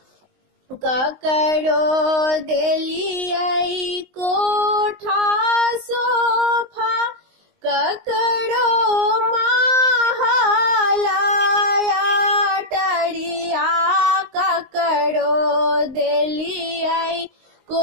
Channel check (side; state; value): left; late; 19 ms